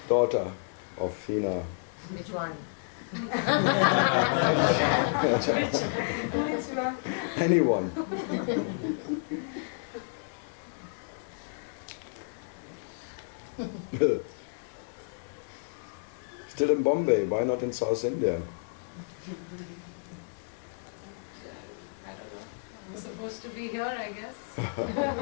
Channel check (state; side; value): silent; right; digital silence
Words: Daughter of Hina. Which one? Anyone. Still in Bombay, why not in South India? I don't know. I'm supposed to be here, I guess.